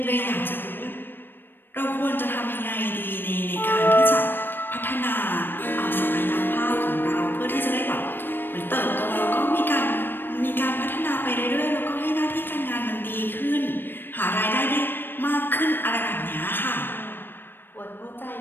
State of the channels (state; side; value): late; right; 0.096 ms